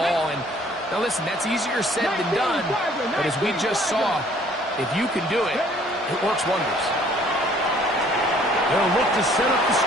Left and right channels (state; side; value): normal; both; correlation 0.58